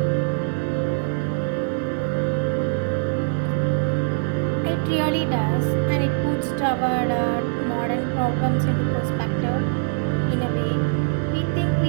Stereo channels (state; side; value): silent; left; digital silence